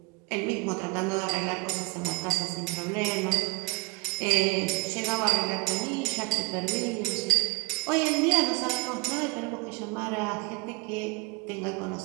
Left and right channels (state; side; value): quieter; left; 25.7 dB